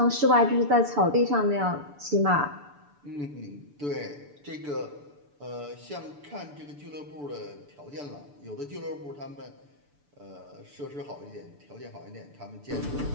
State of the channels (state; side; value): late; left; 6.9 ms